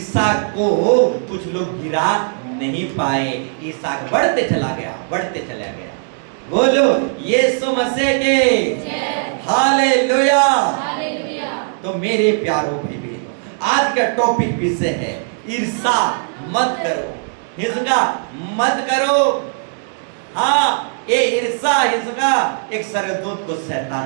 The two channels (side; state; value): left; silent; digital silence